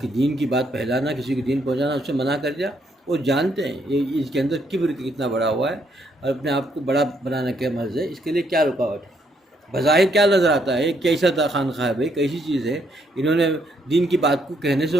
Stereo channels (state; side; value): normal; both; correlation 0.73